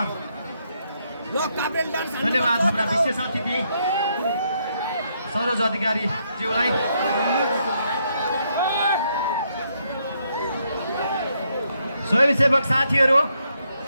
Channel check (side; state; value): both; inverted; correlation -0.76